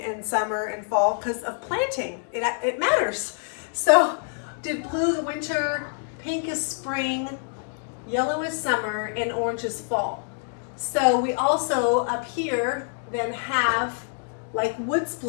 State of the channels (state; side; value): silent; right; 61 dB below the other